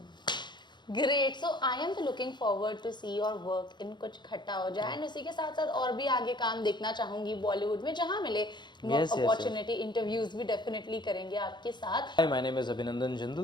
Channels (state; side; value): late; right; 0.22 ms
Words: Great. So I am looking forward to see your work in कुछ खट्टा हो जाए, एंड उसी के साथ साथ और भी आगे काम देखना चाहूंगी बॉलीवुड में, जहाँ मिले अपॉर्चुनिटी, इंटरव्यूज भी डेफिनेटली करेंगे आपके साथ। Hi, my name is Abhinandan